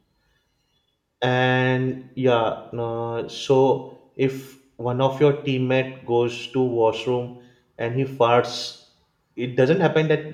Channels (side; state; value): both; identical; correlation 1.00